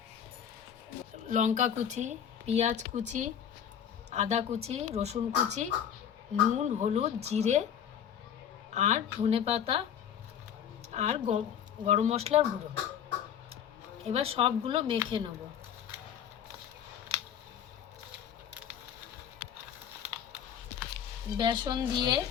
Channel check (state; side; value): quieter; right; 8.9 dB